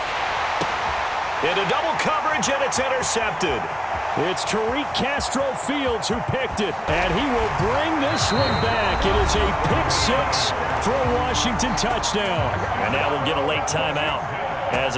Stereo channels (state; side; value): identical; both; correlation 1.00